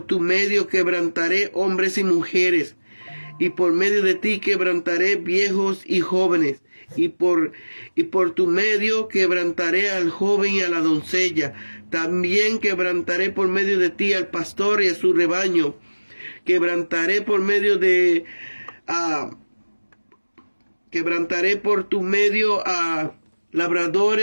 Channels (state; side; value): inverted; both; correlation -1.00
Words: tu medio quebrantaré hombres y mujeres, y por medio de ti quebrantaré viejos y jóvenes, y por tu medio quebrantaré al joven y a la doncella. También quebrantaré por medio de ti al pastor y a su rebaño. Quebrantaré por tu medio a